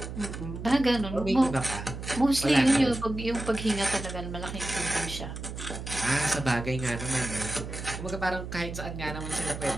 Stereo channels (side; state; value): right; noise; hum, 8 dB below the sound